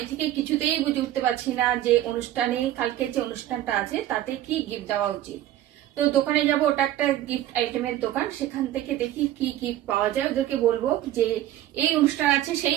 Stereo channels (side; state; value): left; quieter; 13.2 dB